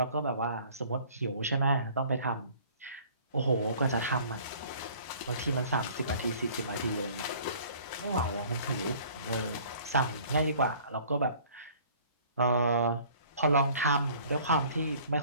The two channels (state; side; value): inverted; both; correlation -0.52